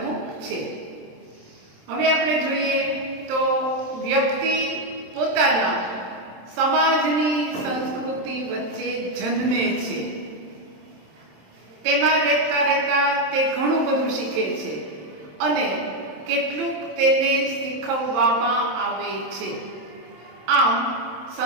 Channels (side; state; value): left; late; 27 ms